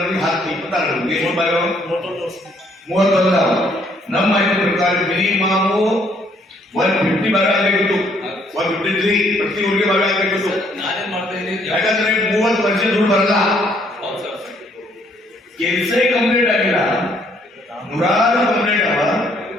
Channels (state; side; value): normal; both; correlation 0.67